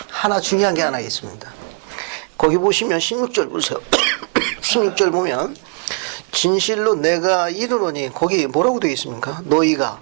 하나 중요한 게 하나 있습니다. 거기 보시면 16절 보세요. 16절 보면 진실로 내가 이르노니 거기 뭐라고 되어 있습니까? 너희가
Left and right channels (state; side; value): quieter; left; 39.6 dB